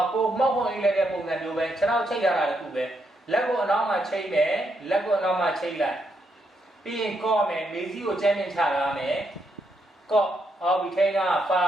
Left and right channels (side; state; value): both; normal; correlation 0.79